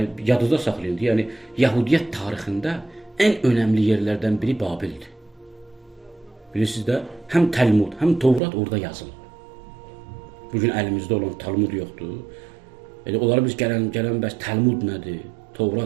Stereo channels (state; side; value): drops out; left; at 8.4 s